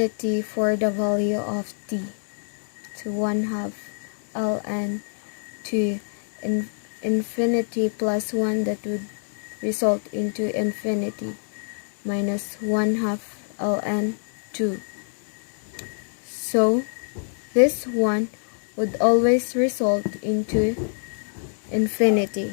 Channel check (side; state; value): right; silent; 61 dB below the other